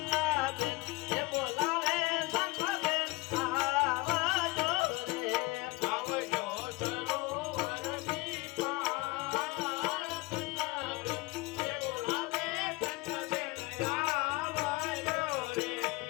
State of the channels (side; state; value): right; quieter; 22.8 dB